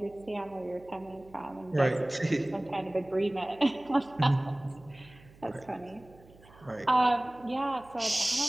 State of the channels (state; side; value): noise; right; hum, 24 dB below the sound